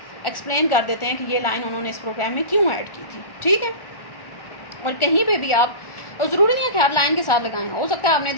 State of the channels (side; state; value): right; late; 1.4 ms